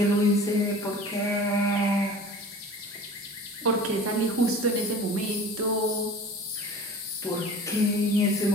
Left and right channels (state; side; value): normal; both; correlation 0.41